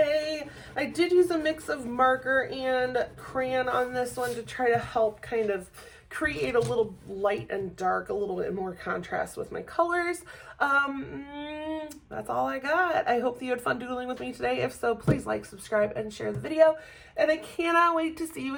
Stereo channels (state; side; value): identical; both; correlation 1.00